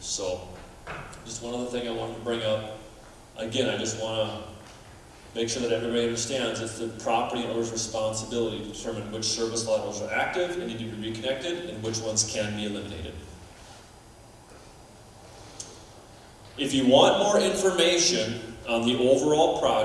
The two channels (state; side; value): identical; both; correlation 1.00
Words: So, just one other thing I wanted to bring up. Again, I just want to make sure that everybody understands it's the property owner's responsibility to determine which service laterals are active and need to be reconnected and which ones can be eliminated. If you want more information on the overall